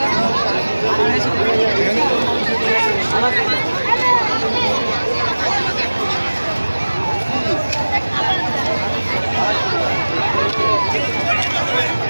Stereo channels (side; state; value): both; inverted; correlation -1.00